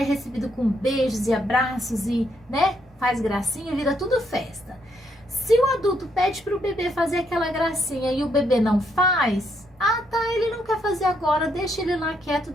recebido com beijos e abraços e, né, faz gracinha, vira tudo festa. Se o adulto pede pro bebê fazer aquela gracinha e o bebê não faz, ele não quer fazer agora, deixa ele lá quieto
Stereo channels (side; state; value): both; normal; correlation 0.75